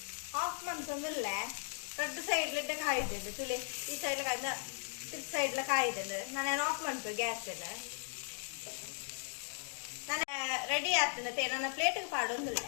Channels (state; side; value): silent; right; 53 dB below the other